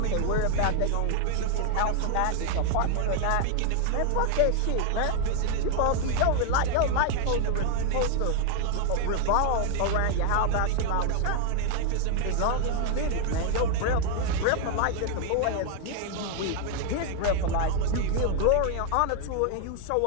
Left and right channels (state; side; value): different; both; correlation 0.00